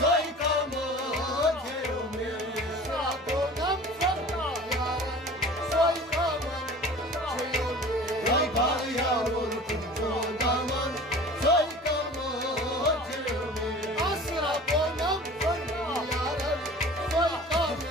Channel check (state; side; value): normal; both; correlation 0.41